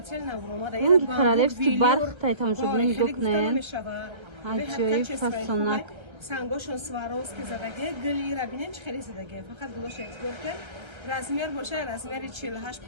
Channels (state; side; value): late; left; 1.3 ms